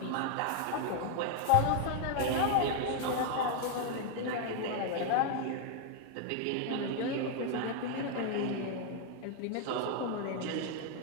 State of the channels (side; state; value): both; different; correlation 0.00